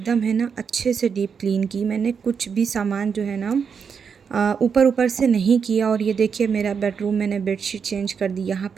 है ना अच्छे से डीप क्लीन की। मैंने कुछ भी सामान जो है ना ऊपर ऊपर से नहीं किया। और ये देखिए मेरा बेडरूम मैंने बेडशीट चेंज कर दी, यहाँ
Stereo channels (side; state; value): left; quieter; 6.4 dB